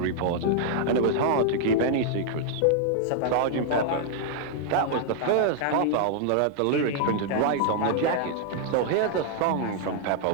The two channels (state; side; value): different; both; correlation -0.01